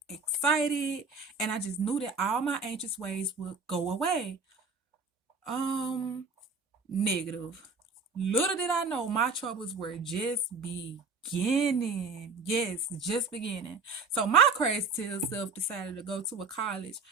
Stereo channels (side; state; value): left; quieter; 4.2 dB